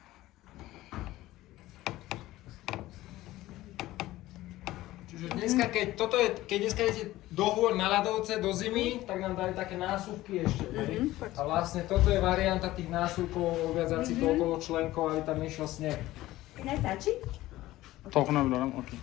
Čiže dneska, keď dneska idete do hôr na ľadovce, do zimy, tak nám dali také násuvky ešte. A vlastne toto je varianta tých násuvkov, viazať si to okolo členkov, aby tam išiel sneh. Nestačí? Toľko nevydarám, ok.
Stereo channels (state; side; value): quieter; right; 16.5 dB